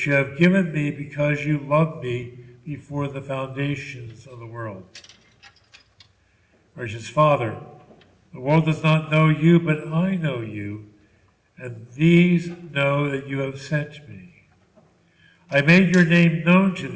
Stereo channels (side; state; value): both; identical; correlation 1.00